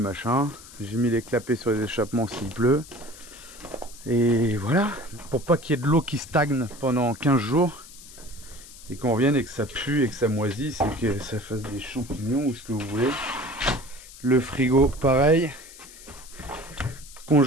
J'ai mis les clapets sur les échappements s'il pleut. Et voilà, pour pas qu'il y ait de l'eau qui stagne pendant 15 jours. Et qu'on revienne et que ça pue et que ça moisisse et que ça fasse des champignons ou ce que vous voulez. Le frigo, pareil.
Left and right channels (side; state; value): left; noise; hiss, 18 dB below the sound